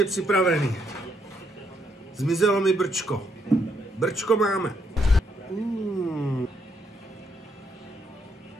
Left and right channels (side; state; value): both; normal; correlation 0.74